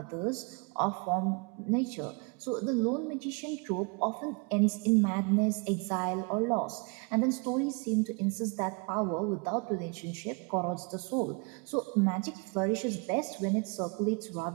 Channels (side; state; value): left; quieter; 32.1 dB